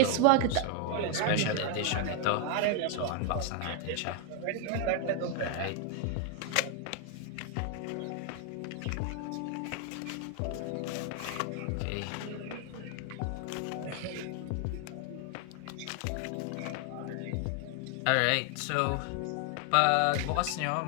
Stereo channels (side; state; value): both; different; correlation 0.01